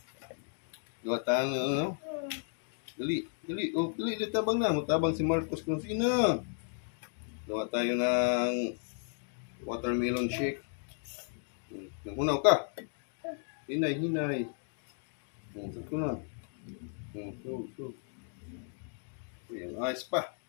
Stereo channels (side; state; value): right; silent; 55 dB below the other